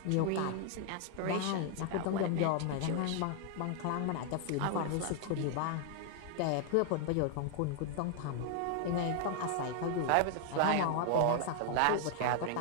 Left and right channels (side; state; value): both; different; correlation 0.00